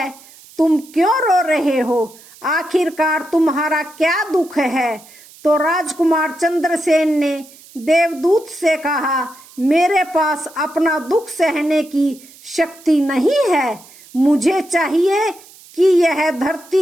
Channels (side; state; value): right; noise; hiss, 23 dB below the sound